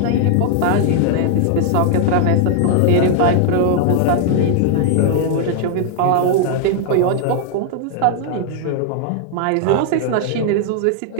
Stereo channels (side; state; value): both; different; correlation 0.00